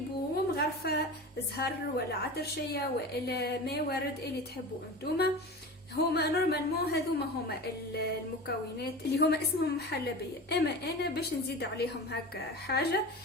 ومغرفة زهر ولا عطرشية ولا ما ورد اللي تحبوا انتوما. هما نورمالمون هذوما هما المكونات اللي هما اسمهم محلبية، اما انا باش نزيد عليهم هكا حاجة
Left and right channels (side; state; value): both; normal; correlation 0.31